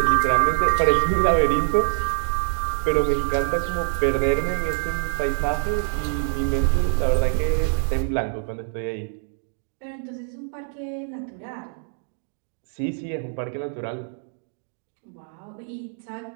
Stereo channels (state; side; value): silent; left; digital silence